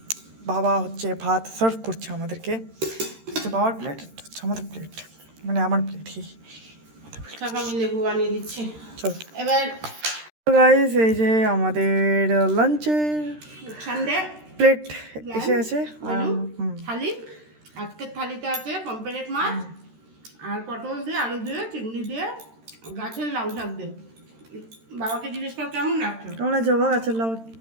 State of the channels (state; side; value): late; left; 13 ms